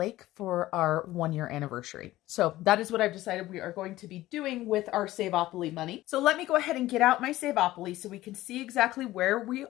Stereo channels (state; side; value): quieter; right; 16.2 dB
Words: for our 1-year anniversary. So that is what I've decided we are going to be doing with our Saveopoly money. So let me go ahead and get out my Saveopoly so we can see exactly where we